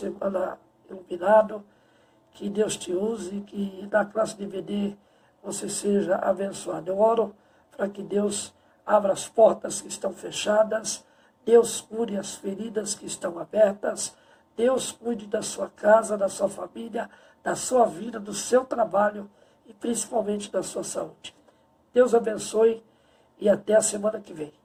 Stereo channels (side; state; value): both; identical; correlation 1.00